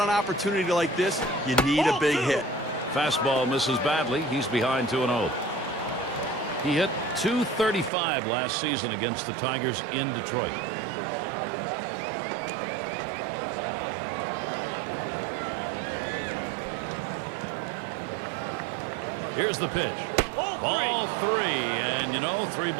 an opportunity like this, you need a big hit. Fastball misses badly. He's behind 2-0. He hit .235 last season against the Tigers in Detroit. Here's the pitch. Ball three. And, you know, 3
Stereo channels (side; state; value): left; drops out; at 7.9 s